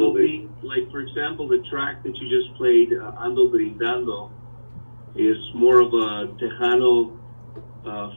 Like for example, the track that you just played, Ando Brindando, is more of a Tejano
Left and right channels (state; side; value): inverted; both; correlation -1.00